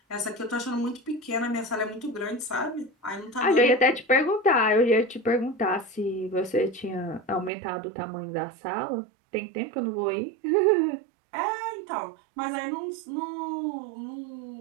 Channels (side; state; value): left; drops out; at 7.5 s